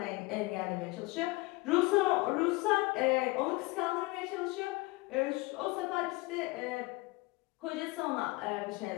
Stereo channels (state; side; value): quieter; right; 23.5 dB